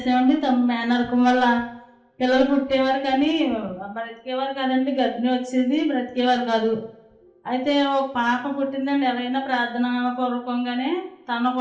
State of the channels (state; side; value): identical; both; correlation 1.00